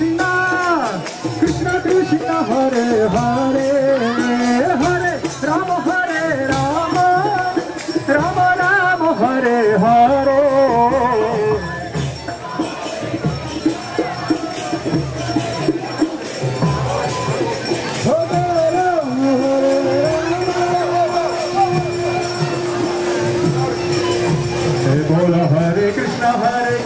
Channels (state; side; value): identical; both; correlation 1.00